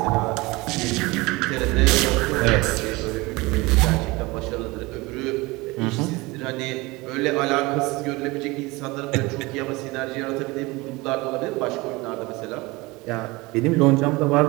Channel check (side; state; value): left; quieter; 23.0 dB